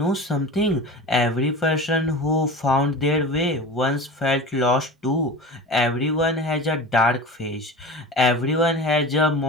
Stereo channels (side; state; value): both; normal; correlation 0.32